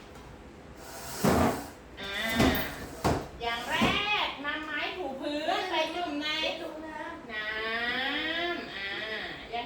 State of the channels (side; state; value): both; identical; correlation 1.00